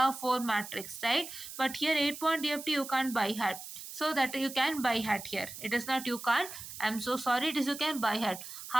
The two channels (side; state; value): right; noise; hiss, 11 dB below the sound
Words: 4 matrix, right? But here 8-point DFT you can't buy hat. So that you can buy hat here. It is not you can't. I'm so sorry. It is you can buy hat.